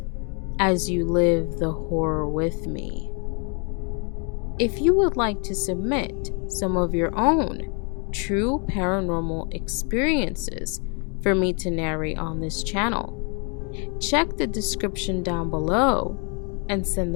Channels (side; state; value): right; quieter; 36.4 dB